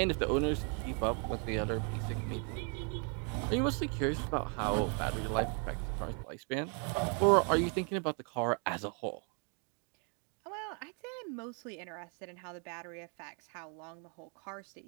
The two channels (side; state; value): left; quieter; 38.9 dB